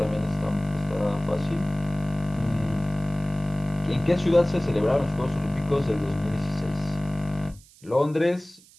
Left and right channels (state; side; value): noise; right; hiss, 25 dB below the sound